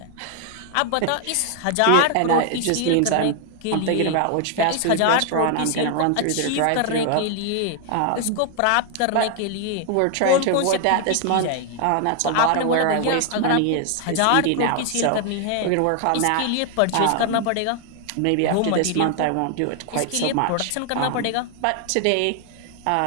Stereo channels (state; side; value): different; both; correlation 0.00